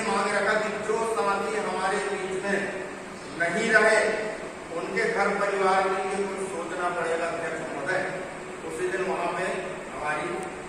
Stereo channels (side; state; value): both; identical; correlation 1.00